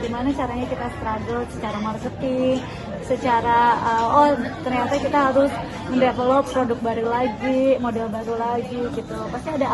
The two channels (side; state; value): both; identical; correlation 1.00